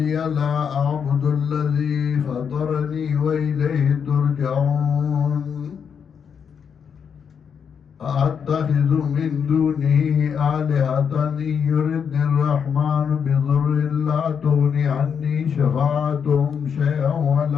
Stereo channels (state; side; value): quieter; right; 7.1 dB